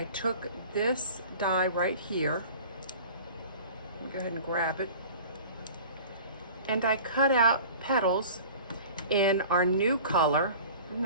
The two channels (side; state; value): both; inverted; correlation -0.42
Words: took this die right here, go ahead and grab it, and I cut out petals in our new color. Isn't